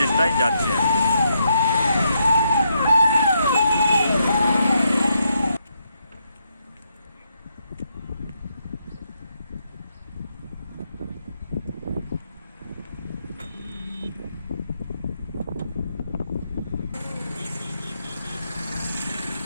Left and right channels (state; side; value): inverted; both; correlation -0.79